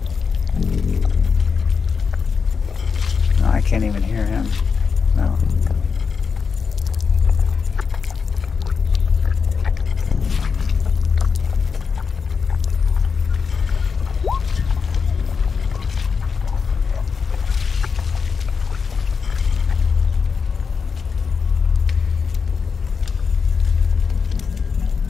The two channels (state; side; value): quieter; right; 5.6 dB